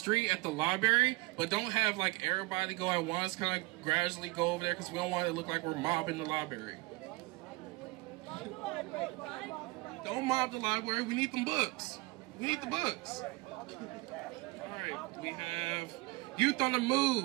at the library, but don't have like everybody go at once, kind of gradually go over there because we don't want it to look like we're mobbing the library. Don't mob the library, we need them books. We need the books. Alright, we have Youth on the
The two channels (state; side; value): quieter; left; 23.1 dB